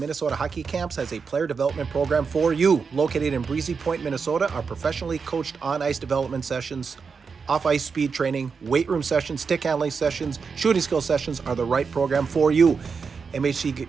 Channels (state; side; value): quieter; left; 5.4 dB